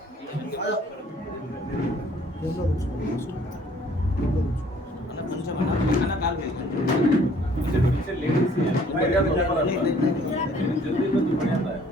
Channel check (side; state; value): both; normal; correlation 0.58